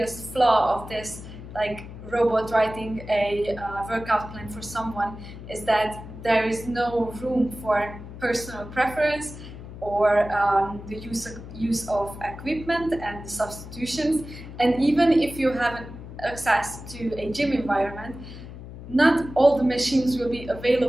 flaw of this, like robot writing a workout plan for someone, is that there is no room for personal preference or the use of equipment and the substitutions. And even if you have access to a gym environment, not all the machines will be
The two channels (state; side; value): noise; left; hum, 13 dB below the sound